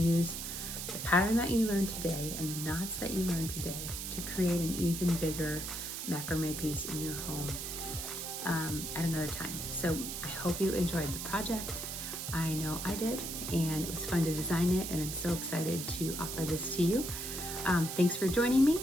the pattern that you learned today and the knots that you learned today to create an even bigger macrame piece in your home at another time. So I hope you enjoyed the project. I know I did, and it was fun to design it, and I'm so excited to offer this to you. Thanks for joining me,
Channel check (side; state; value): right; noise; hiss, 5 dB below the sound